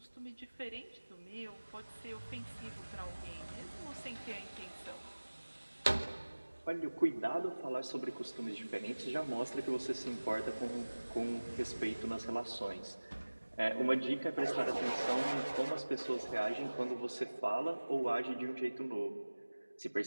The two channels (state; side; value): inverted; both; correlation -1.00